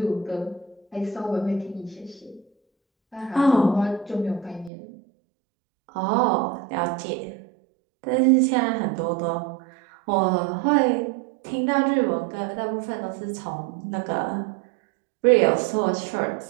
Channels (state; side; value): drops out; left; at 4.7 s